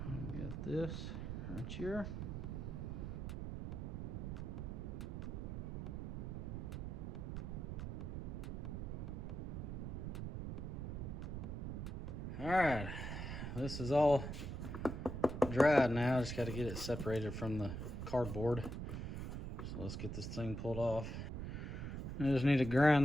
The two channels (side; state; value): right; noise; rumble, 5 dB below the sound